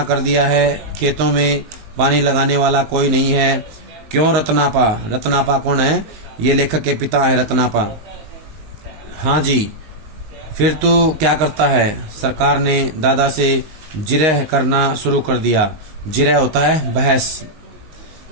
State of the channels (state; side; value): late; left; 19 ms